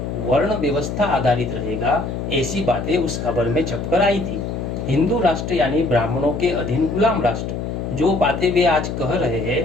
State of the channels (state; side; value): noise; left; hum, 4 dB below the sound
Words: वर्ण व्यवस्था आधारित रहेगा, ऐसी बातें उस खबर में छपकर आई थी। हिंदू राष्ट्र यानी ब्राह्मणों के अधीन गुलाम राष्ट्र, जो बातें वे आज कह रहे